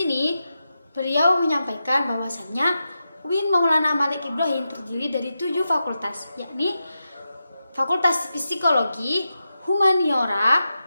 beliau menyampaikan bahwasannya UIN Maulana Malik Ibrahim terdiri dari 7 fakultas, yakni Fakultas Psikologi, Humaniora,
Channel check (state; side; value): inverted; both; correlation -0.89